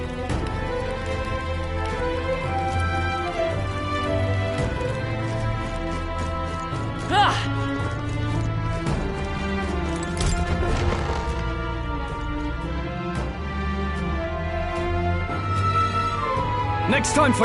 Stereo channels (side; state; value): both; identical; correlation 1.00